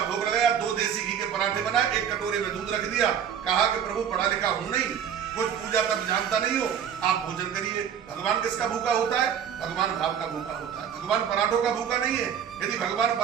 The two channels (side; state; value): left; quieter; 8.3 dB